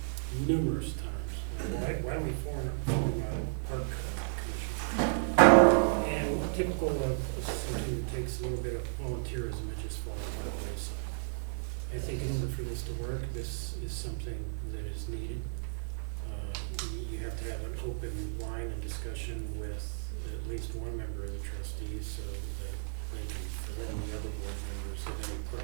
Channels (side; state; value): left; silent; 56 dB below the other